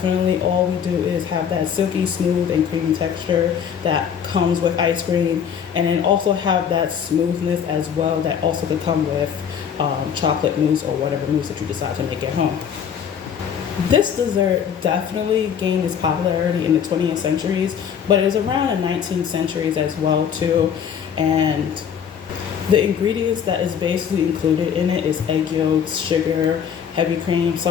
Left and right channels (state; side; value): quieter; right; 8.0 dB